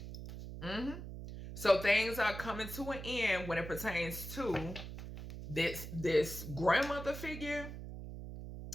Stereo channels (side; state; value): right; noise; hum, 9 dB below the sound